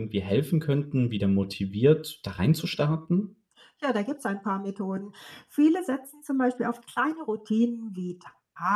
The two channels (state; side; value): identical; both; correlation 1.00